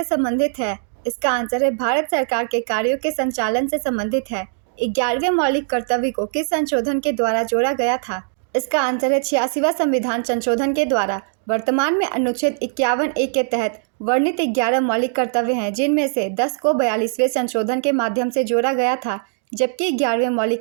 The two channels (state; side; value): silent; left; digital silence